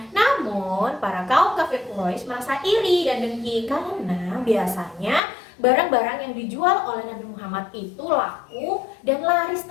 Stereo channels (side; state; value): right; drops out; at 5.2 s